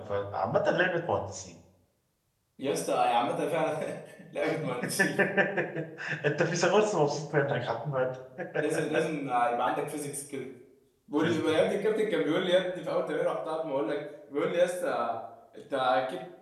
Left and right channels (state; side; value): identical; both; correlation 1.00